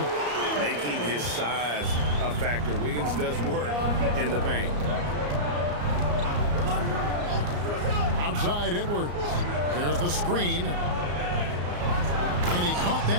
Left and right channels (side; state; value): left; late; 34 ms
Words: Making his size a factor. Wiggins does work in the paint. Outside Edwards. There's the screen. And he caught